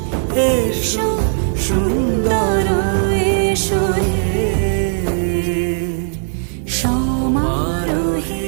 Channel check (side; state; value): left; silent; 58 dB below the other